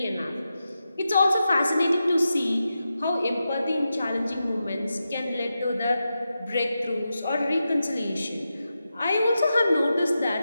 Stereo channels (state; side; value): inverted; both; correlation -0.90